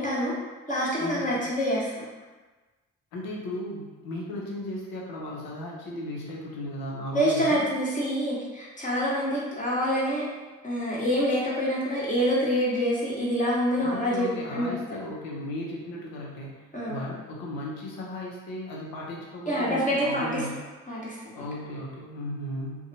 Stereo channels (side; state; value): both; normal; correlation 0.34